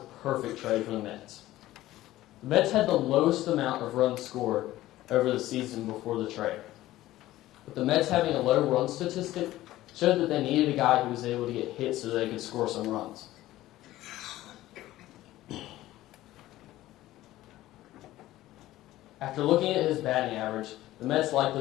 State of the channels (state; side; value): quieter; right; 15.6 dB